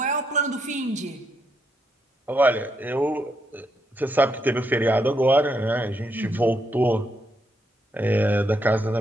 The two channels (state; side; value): normal; both; correlation 0.78